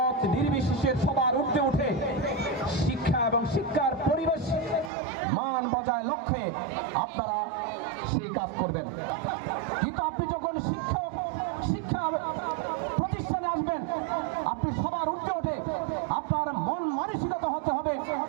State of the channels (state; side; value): drops out; left; at 4.9 s